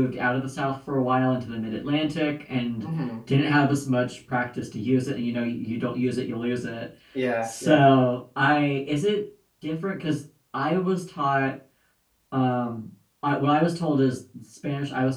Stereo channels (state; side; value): identical; both; correlation 1.00